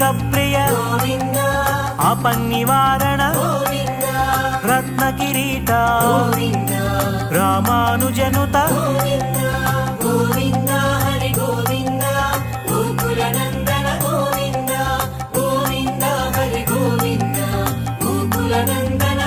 ప్రియ గోవింద ఆపన్నివారణ గోవింద రత్న కిరీట గోవింద రామానుజనుత గోవింద గోవింద హరి గోవింద గోకుల నందన గోవింద గోవింద హరి గోవింద గోకుల నందన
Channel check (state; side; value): identical; both; correlation 1.00